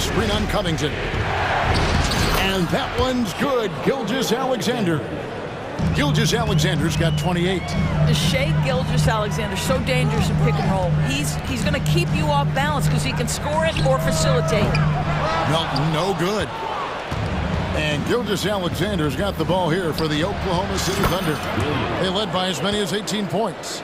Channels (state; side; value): identical; both; correlation 1.00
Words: on Covington. And that one's good. Gilgeous-Alexander. Gilgeous-Alexander's got 28. Shai Gilgeous-Alexander, so dangerous in pick and roll. He's going to keep you off balance because he can score it or facilitate. Melton, no good. And Gilgeous-Alexander's got the ball here for the Oklahoma City Thunder. They led by as many as 18 points.